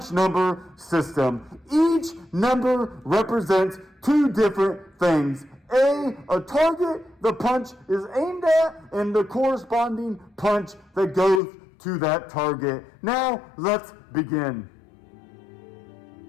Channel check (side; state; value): right; drops out; at 11.4 s